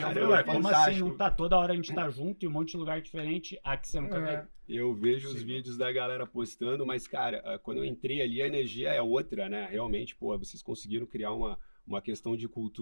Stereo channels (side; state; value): both; inverted; correlation -1.00